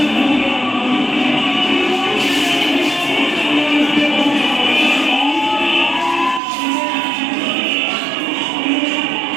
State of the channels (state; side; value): drops out; left; at 6.4 s